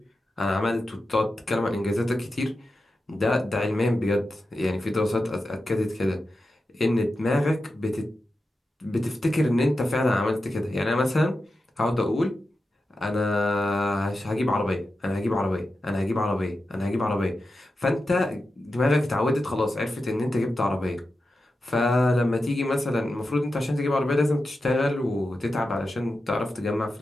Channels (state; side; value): normal; both; correlation 0.91